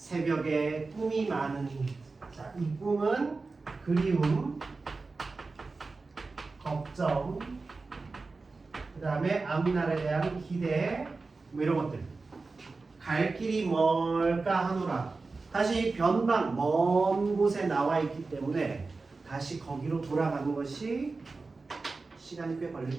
꿈이 많으니. 자, 이 꿈은 그리움, 걱정, 그 다음에 앞날에 대한 기대, 뭐 이런 것들. 갈 길이 뭘까 하노라. 다시 변방, 먼 곳에 나와 있기 때문에 다시 거기로 돌아가는 것이 시간이 꽤 걸릴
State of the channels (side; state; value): left; quieter; 3.9 dB